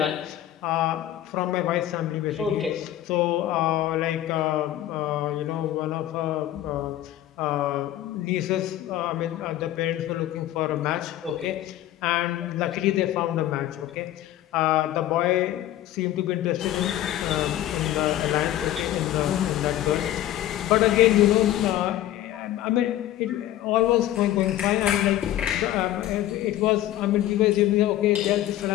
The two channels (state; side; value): quieter; right; 13.3 dB